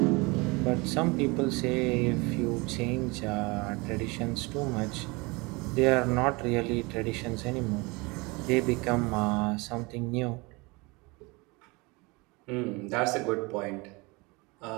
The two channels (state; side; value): quieter; left; 26.0 dB